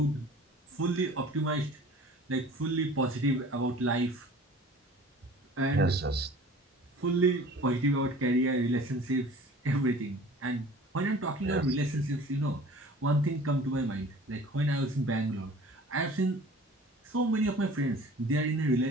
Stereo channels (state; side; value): normal; both; correlation 0.45